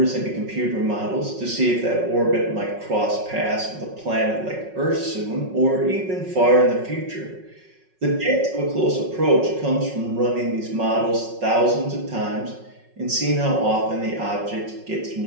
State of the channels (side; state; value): left; late; 5.4 ms